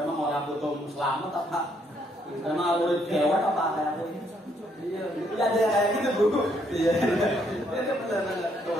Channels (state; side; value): normal; both; correlation 0.71